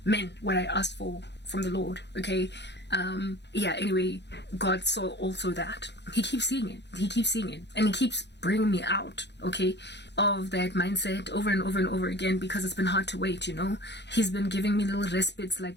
men, what I asked for from the Lord. Okay. Anyway, God saw also that. He keeps seeing it and he keeps bringing me out, okay, of that mindset over and over and over again, because it's been hard to wait. He's been giving me little respites, like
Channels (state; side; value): late; right; 0.50 ms